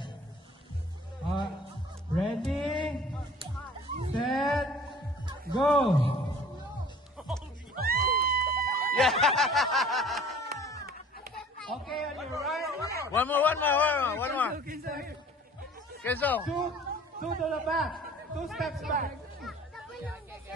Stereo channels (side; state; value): both; normal; correlation 0.49